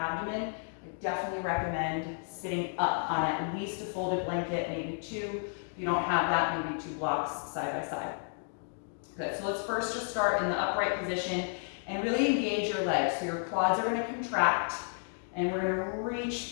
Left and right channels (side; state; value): right; silent; 56 dB below the other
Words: I definitely recommend sitting up on at least a folded blanket, maybe 2. If you don't have that, maybe 2 blocks side by side. Good, so let's first just start in the upright position and really engage your legs. So your quads are going to contract and we're going to